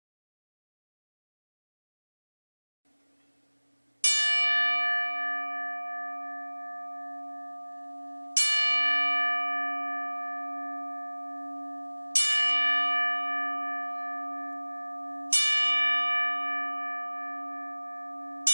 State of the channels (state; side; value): inverted; both; correlation -1.00